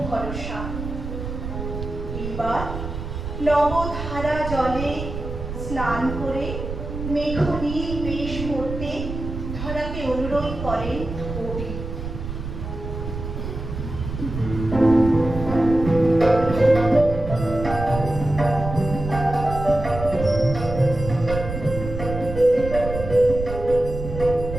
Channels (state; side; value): noise; right; rumble, 7 dB below the sound